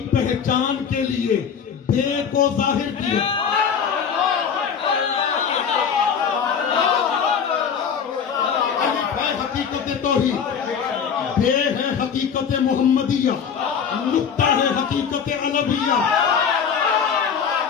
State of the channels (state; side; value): quieter; right; 7.0 dB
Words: पहचान के लिए बे को जाहिर किया। अलिफ है हकीकत तौहीद, बे है हकीकत मोहम्मदिया, नुक्ता है हकीकत अलविया।